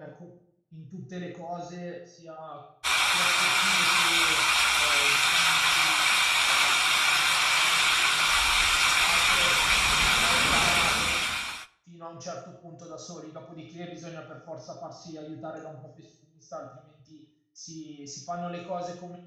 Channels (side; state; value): both; identical; correlation 1.00